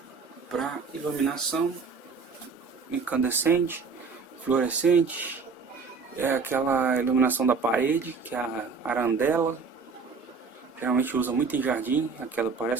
Para iluminação, incandescente, fluorescente, é aquela iluminação da parede, que é a arandela, geralmente usa muito em jardim, aquela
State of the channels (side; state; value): left; quieter; 4.9 dB